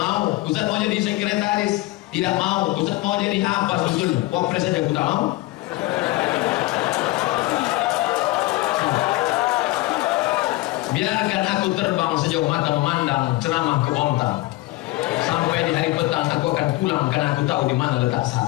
Ustaz mau jadi sekretaris, tidak mau. Ustaz mau jadi apa sebetulnya? Wapres saja aku tak mau. Biarkan aku terbang sejauh mata memandang, ceramah ke Bontang. Sampai di hari petang aku akan pulang karena aku tahu di mana letak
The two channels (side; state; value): right; quieter; 19.5 dB